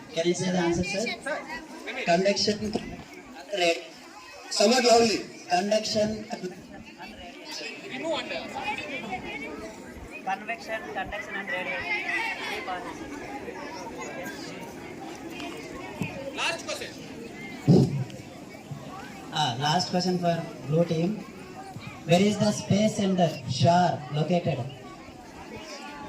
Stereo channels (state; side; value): identical; both; correlation 1.00